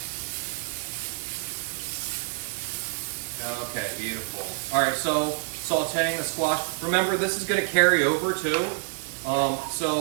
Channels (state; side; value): silent; left; digital silence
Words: Okay, beautiful. All right, so sauteing the squash. Remember, this is going to carry over too.